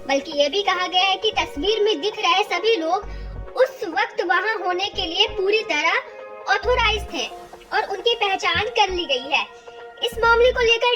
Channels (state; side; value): identical; both; correlation 1.00